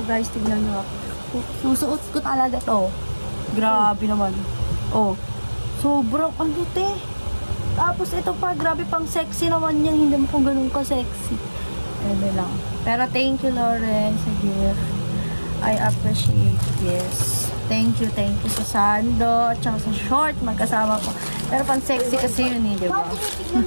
guys, tignan nyo ako. Susuot ko talaga to. Grabe naman. Oh. Sobrang ano, te. Tapos ito pa, grabe pang sexy naman yan. Hindi mo kung ganun ka-sexy. Ano lang. Pero thank you, Lawrence, sa gift. I appreciate this. Thank you sa sando at saka sa short. Magkasama ko. Pero pang sexy kasi yun eh, diba?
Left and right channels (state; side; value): inverted; both; correlation -1.00